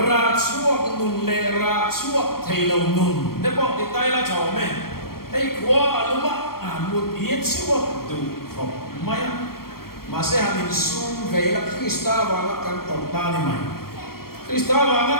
chuak nun le ra chuak theilo nun de bok ti tai la chaw me ei khwa aluma mut yet chuak du khop maya Masih hamin sum vela Krista wala kan torta ni mai. Krista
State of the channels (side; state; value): right; late; 0.93 ms